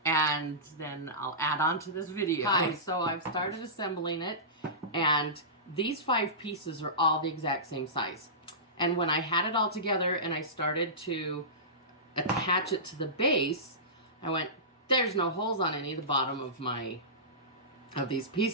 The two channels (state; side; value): normal; both; correlation -0.20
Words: and then I'll add on to this video. Hi, so I've started assembling it, and these 5 pieces are all the exact same size. And when I had it all together and I started to attach it to the base, I went, there's no holes on any of the bottom of these